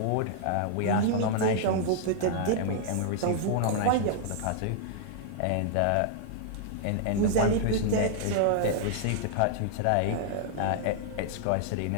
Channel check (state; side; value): different; both; correlation -0.01